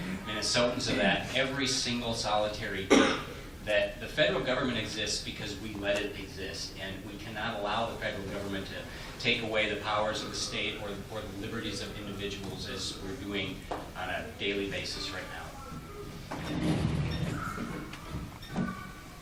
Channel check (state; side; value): identical; both; correlation 1.00